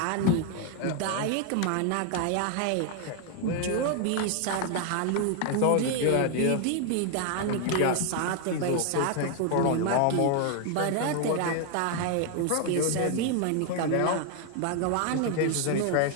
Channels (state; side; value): different; both; correlation 0.00